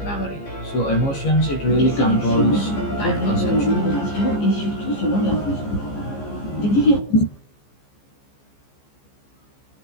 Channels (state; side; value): late; right; 15 ms